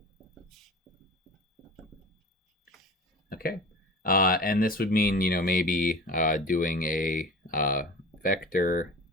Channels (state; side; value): normal; both; correlation 0.36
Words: Okay, and this would mean, maybe doing a vector